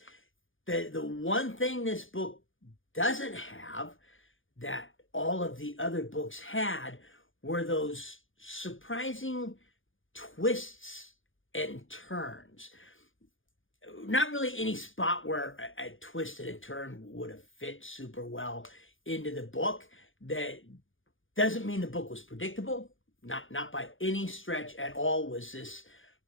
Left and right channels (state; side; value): late; right; 0.58 ms